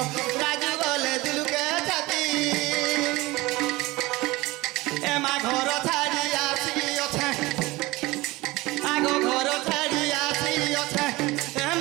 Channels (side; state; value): left; quieter; 20.8 dB